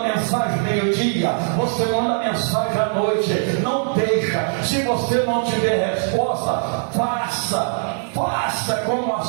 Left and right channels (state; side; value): silent; left; 63 dB below the other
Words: mensagem meio-dia, você manda mensagem à noite. Não deixa. Se você não tiver resposta, faça como a